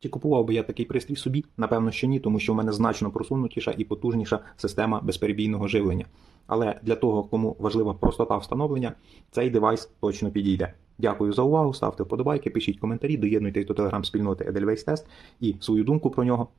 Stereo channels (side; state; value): left; quieter; 5.9 dB